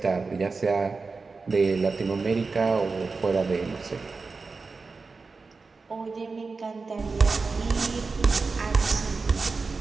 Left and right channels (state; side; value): quieter; left; 4.3 dB